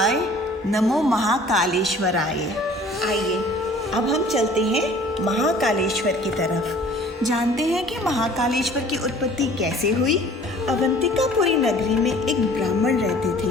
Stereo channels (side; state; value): both; normal; correlation 0.50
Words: नमो महाकालेश्वराय। आइए अब हम चलते हैं महाकालेश्वर की तरफ। जानते हैं कि महाकालेश्वर की उत्पत्ति कैसे हुई। अवंतिकापुरी नगरी में एक ब्राह्मण रहते